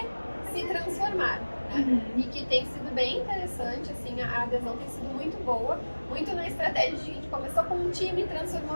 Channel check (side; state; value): both; inverted; correlation -1.00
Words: se transformar, né? E que tem sido bem interessante, assim, a adesão tem sido muito boa, muito na estratégia de a gente começou com um time,